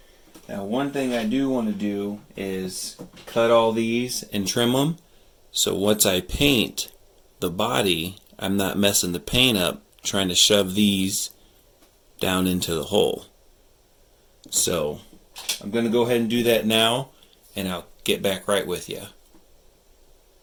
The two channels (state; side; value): identical; both; correlation 1.00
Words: Now one thing I do want to do is cut all these and trim them, so once I paint the body, I'm not messing the paint up trying to shove these down into the hole. So I'm going to go ahead and do that now, and I'll get back right with you.